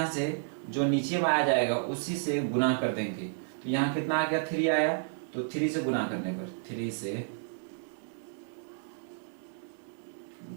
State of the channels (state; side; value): silent; left; digital silence